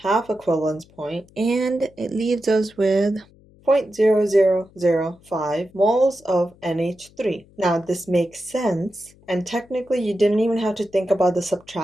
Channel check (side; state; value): left; noise; hum, 28 dB below the sound